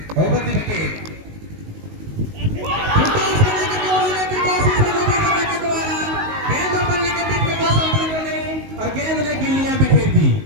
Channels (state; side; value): late; left; 19 ms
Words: ओवर द विकेट, और गेंद ने गिल्लियां बिखेर दी।